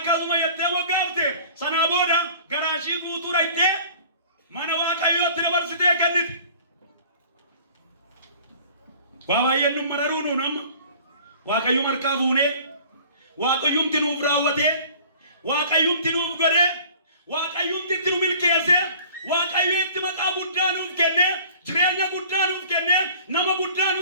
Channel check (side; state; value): both; inverted; correlation -0.48